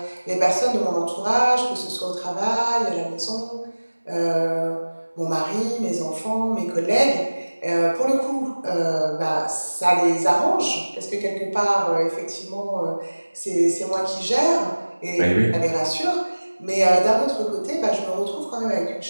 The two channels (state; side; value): inverted; both; correlation -1.00